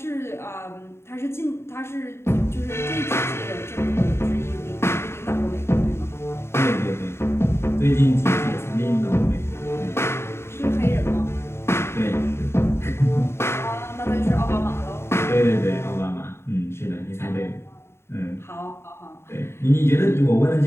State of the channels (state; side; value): late; right; 0.12 ms